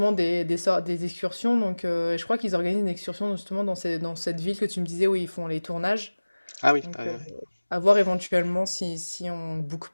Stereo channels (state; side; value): inverted; both; correlation -1.00